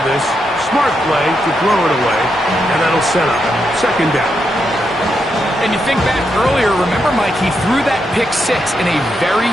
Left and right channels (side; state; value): both; normal; correlation 0.83